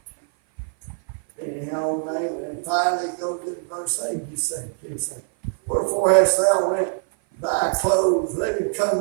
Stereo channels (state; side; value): silent; left; 56 dB below the other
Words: Anyhow, and finally go to verse 8. He said, wherefore hast thou rent thy clothes? Let him come